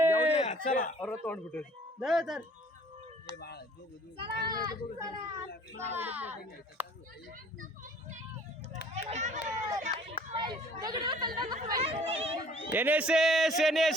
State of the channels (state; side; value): normal; both; correlation 0.54